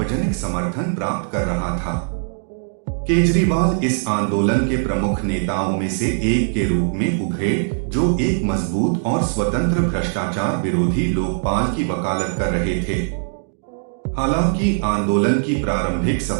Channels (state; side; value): silent; left; digital silence